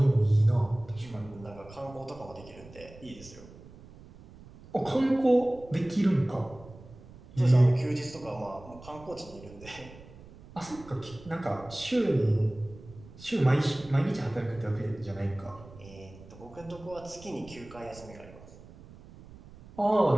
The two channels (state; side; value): noise; right; rumble, 19 dB below the sound